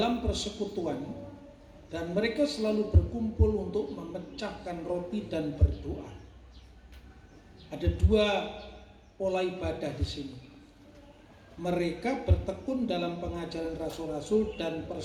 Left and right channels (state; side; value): identical; both; correlation 1.00